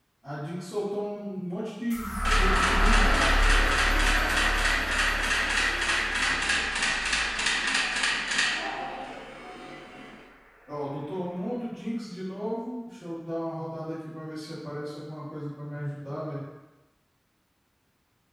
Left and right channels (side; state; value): both; identical; correlation 1.00